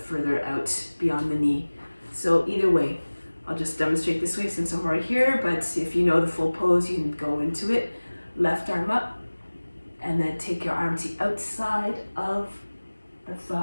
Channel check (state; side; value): inverted; both; correlation -1.00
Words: out beyond the knee. So either way, I'll just demonstrate this way since I'm right here, but if you know the full pose, you can go into it. Left arm up, and then take your arm to the outside of the